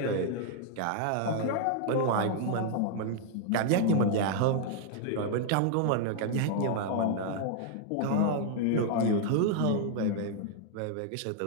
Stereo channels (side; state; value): both; different; correlation 0.00